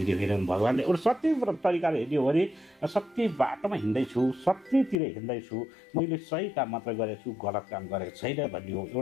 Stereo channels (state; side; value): drops out; right; at 5.0 s